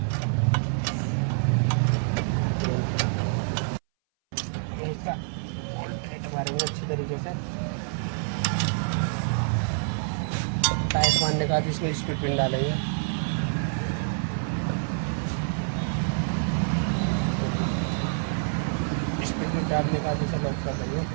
इसका टाइट मारेंगे अच्छी तरीके से। टाइट मारने के बाद इसमें स्पीड पिन डालेंगे। स्पीड पिन डालने के बाद इसे लॉक कर देंगे।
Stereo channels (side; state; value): left; silent; 59 dB below the other